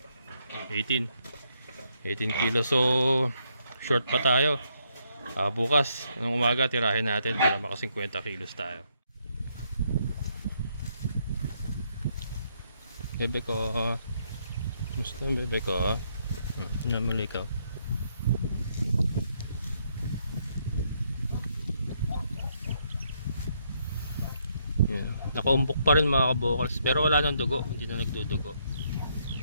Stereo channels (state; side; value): inverted; both; correlation -0.74